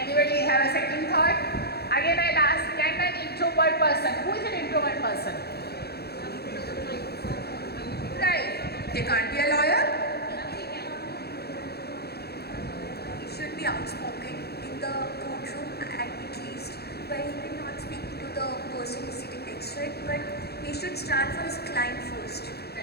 have a second thought? Again, I'll ask, can an introvert person, who is an introvert person? Right. They can't be a lawyer? He should be outspoken in the courtroom at least, where he will not speak to the person who is sitting next to it, but he should stand for his client first.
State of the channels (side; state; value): right; late; 0.46 ms